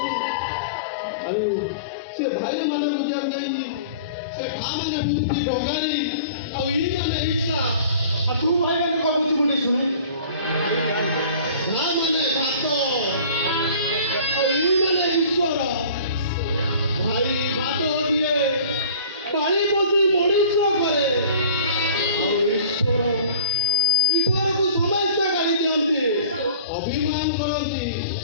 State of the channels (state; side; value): inverted; both; correlation -0.47